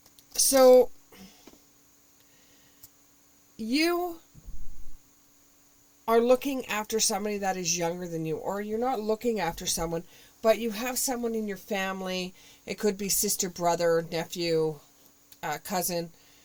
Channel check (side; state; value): both; identical; correlation 1.00